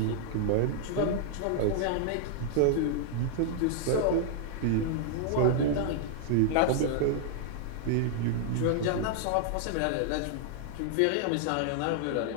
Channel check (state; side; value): different; both; correlation -0.01